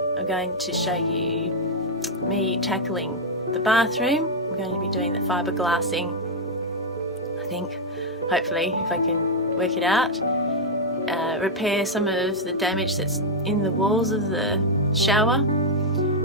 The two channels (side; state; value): both; normal; correlation -0.01